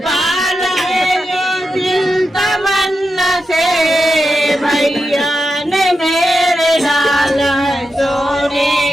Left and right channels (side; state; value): both; normal; correlation 0.88